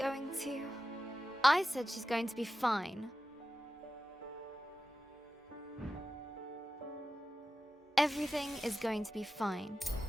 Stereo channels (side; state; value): both; normal; correlation 0.93